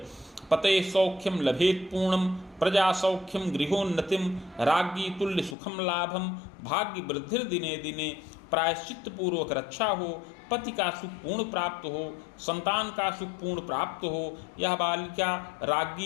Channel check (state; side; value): drops out; right; at 5.6 s